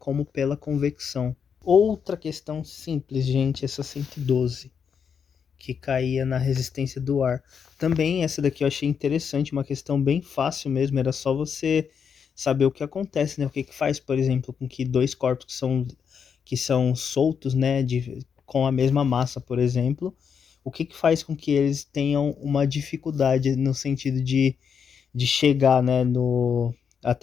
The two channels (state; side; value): quieter; right; 6.9 dB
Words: pela convecção. Outra questão simples, gente, essa 112, que caía na resistência do ar. Também essa daqui eu achei interessante, uma questão bem fácil mesmo, era só você saber o que acontece, né? O que que faz, por exemplo, com que dois corpos que são soltos, né, com a mesma massa, por exemplo, o que que faz com que eles tenham uma dificuldade no sentido de chegar, né,